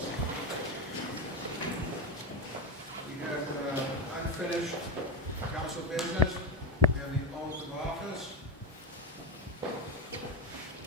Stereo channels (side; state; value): both; normal; correlation 0.15